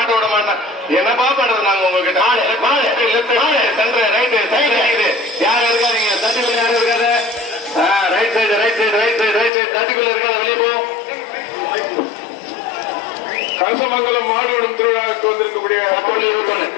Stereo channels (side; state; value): right; drops out; at 9.5 s